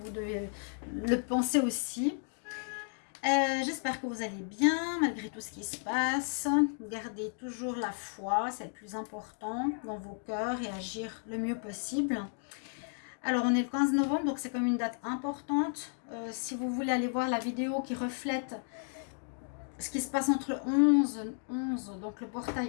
devez le penser aussi. J'espère que vous allez bien malgré tout ce qui se passe. Gardez toujours la foi, c'est le plus important dans vos cœurs et agir le mieux possible. Alors on est le 15 novembre, donc c'est comme une date importante. Si vous voulez aller voir la vidéo qui reflète ce qui se passe entre le 11, donc le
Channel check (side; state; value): right; silent; 55 dB below the other